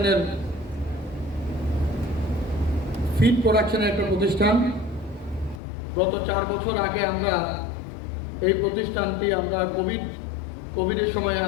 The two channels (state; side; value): drops out; right; at 5.6 s